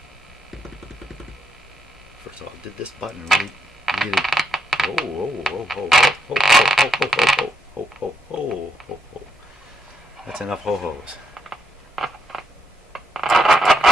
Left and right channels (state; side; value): normal; both; correlation 0.78